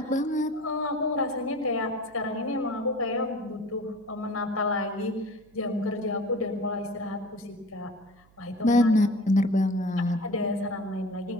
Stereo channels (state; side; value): noise; right; hum, 29 dB below the sound